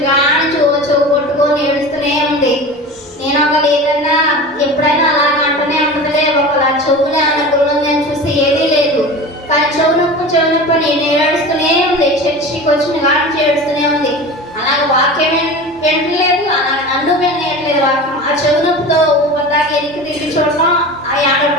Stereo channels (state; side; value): normal; both; correlation 0.33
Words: కానీ చెవు కొట్టుకొని ఏడుస్తూనే ఉంది. నేను ఒకళ్ళు ఏదన్నా ఎప్పుడైనా అలాగే అంటూనే ఉంటుందిలే, ఒకలా చెవులే అన్న గురువుందని చూస్తే ఏదీ లేదు. కానీ చెవు నొప్పి నేను ఏడుస్తూనే ఉంది. చర్చికి వచ్చిన కానీ ఏడుస్తూనే ఉంది. అలాగే వాక్యం వింటలేదు, అలాగే నన్ను వినట్లేదు వాక్యం. ఆ చెవు నొప్పితో ఊపదాకా ఎనికి తిరిగి చూడటం, ఆ